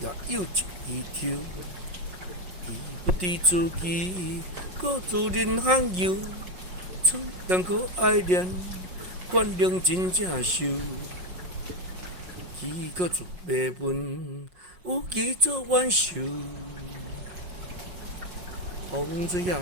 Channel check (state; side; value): late; left; 5.5 ms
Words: 也有一条。伊不知自己，搁自认罕有，出但可爱恋，原谅真正受。伊搁做袂问，有其做挽手。风吹也